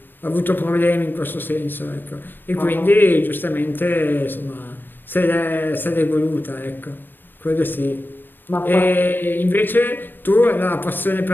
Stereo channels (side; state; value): right; late; 0.094 ms